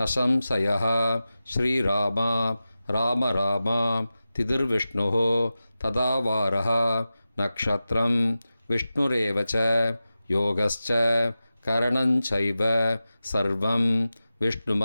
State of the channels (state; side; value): inverted; both; correlation -0.94